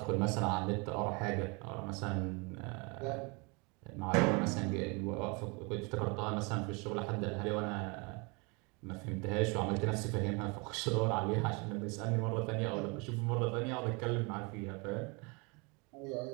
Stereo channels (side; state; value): left; quieter; 30.0 dB